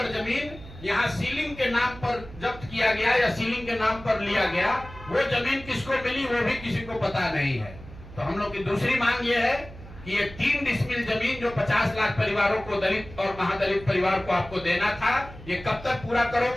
जमीन यहाँ सीलिंग के नाम पर जब्त किया गया या सीलिंग के नाम पर लिया गया, वो जमीन किसको मिली वो भी किसी को पता नहीं है। तो हम लोग की दूसरी मांग ये है कि ये 3 डिसमिल जमीन जो 50 लाख परिवारों को, दलित और महादलित परिवार को आपको देना था, ये कब तक पूरा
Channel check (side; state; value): right; noise; hum, 16 dB below the sound